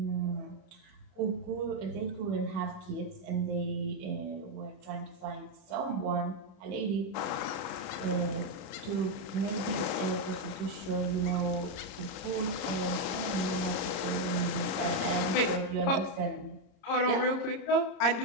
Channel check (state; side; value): late; right; 30 ms